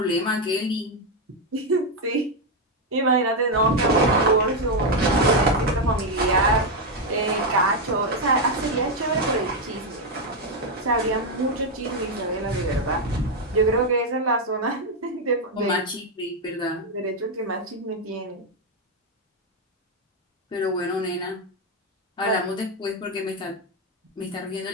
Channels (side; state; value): both; normal; correlation 0.04